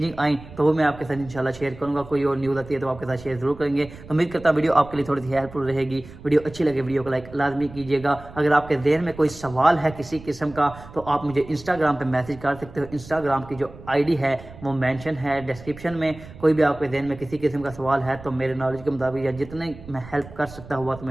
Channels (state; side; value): noise; right; rumble, 17 dB below the sound